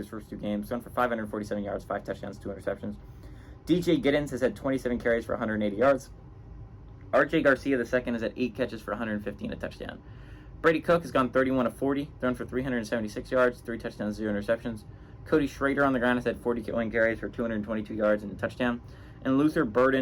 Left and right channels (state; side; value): identical; both; correlation 1.00